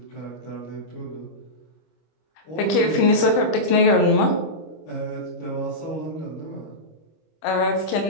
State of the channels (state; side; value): late; right; 25 ms